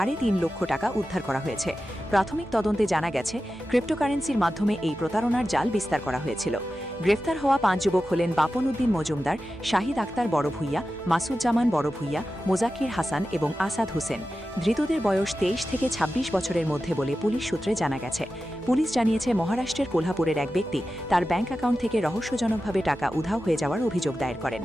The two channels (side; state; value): both; normal; correlation 0.93